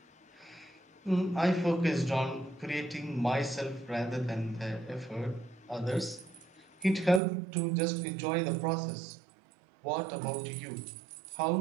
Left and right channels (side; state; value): left; drops out; at 7.2 s